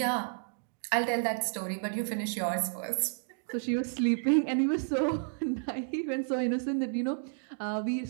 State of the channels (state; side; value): silent; left; digital silence